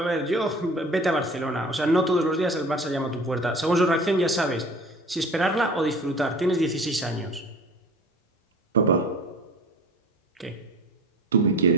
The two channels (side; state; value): both; normal; correlation 0.42